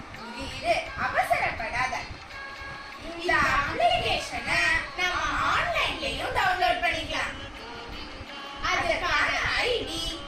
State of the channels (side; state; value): both; identical; correlation 1.00